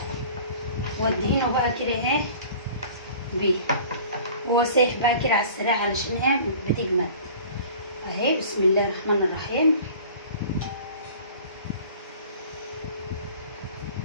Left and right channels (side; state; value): both; inverted; correlation -0.45